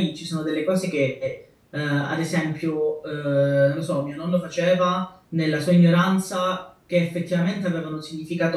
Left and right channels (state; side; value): identical; both; correlation 1.00